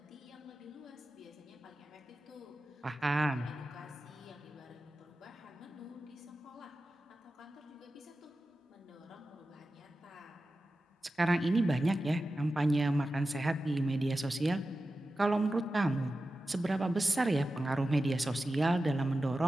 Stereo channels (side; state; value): both; normal; correlation 0.93